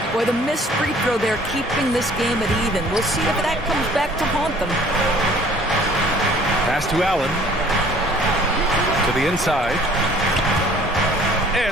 Boy, the missed free throw there keeping this game at even. We'll see if that comes back to haunt them. Pass to Allen. To the inside.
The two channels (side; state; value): both; normal; correlation 0.54